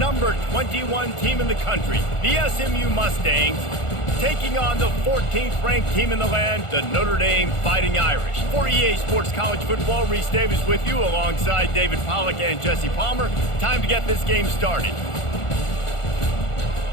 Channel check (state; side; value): late; right; 1.4 ms